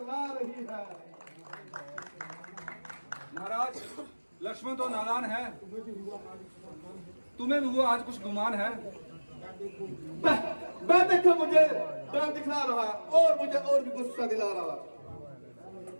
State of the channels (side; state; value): both; inverted; correlation -1.00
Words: रही है। महाराज, लक्ष्मण तो नादान है, तुम्हें भी हुआ आज कुछ गुमान है। मैं देखो मुझे डर दिखला रहा और मुझे और भी गुस्सा दिला रहा।